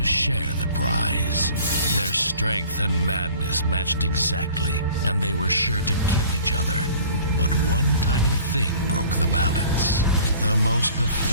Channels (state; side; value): inverted; both; correlation -0.49